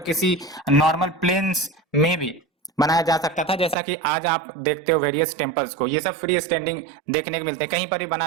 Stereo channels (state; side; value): drops out; left; at 3.8 s